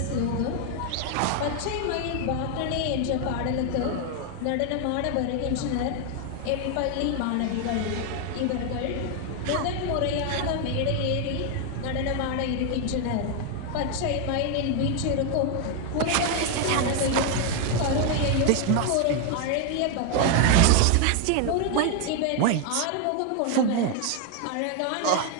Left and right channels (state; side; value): different; both; correlation 0.01